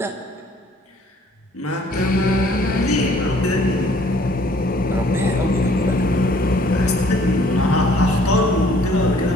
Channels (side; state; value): both; normal; correlation 0.59